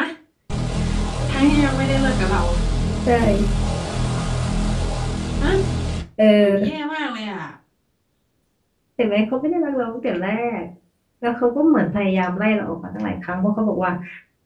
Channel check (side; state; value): both; identical; correlation 1.00